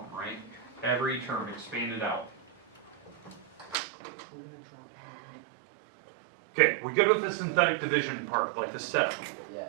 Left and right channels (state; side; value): drops out; left; at 3.8 s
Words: right? Every term expanded out. Okay, we go with the synthetic division part, like the setup. Yes.